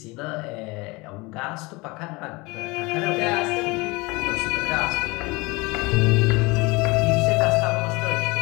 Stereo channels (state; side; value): quieter; right; 24.6 dB